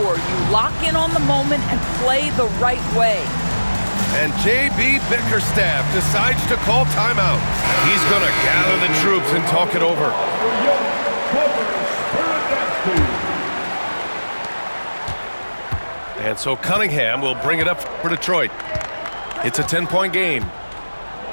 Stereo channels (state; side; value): inverted; both; correlation -1.00